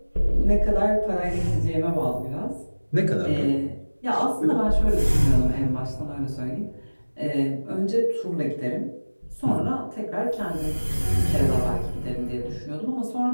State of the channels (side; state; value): both; inverted; correlation -1.00